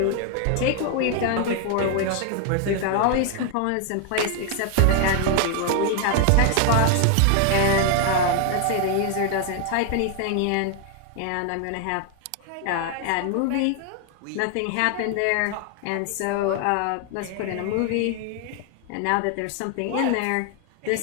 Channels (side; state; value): both; different; correlation 0.00